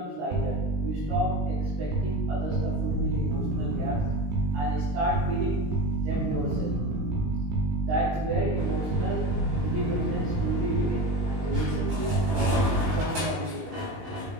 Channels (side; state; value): left; late; 19 ms